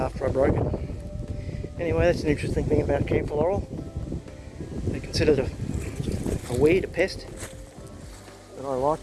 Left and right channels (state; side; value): identical; both; correlation 1.00